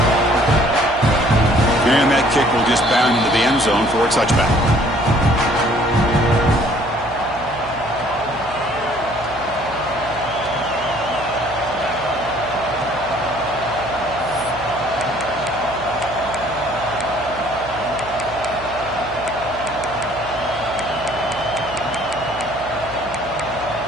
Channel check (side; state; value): right; noise; hum, 17 dB below the sound